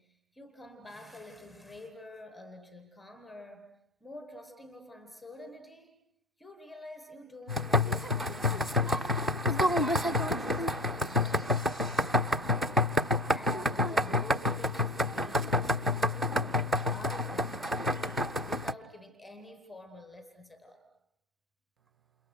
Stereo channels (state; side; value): normal; both; correlation 0.31